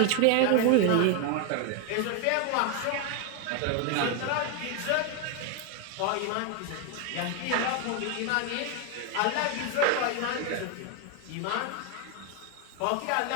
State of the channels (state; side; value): different; both; correlation 0.01